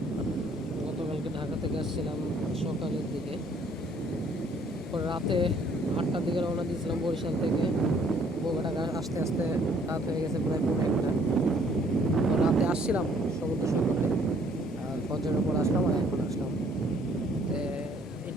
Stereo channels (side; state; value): both; normal; correlation 0.62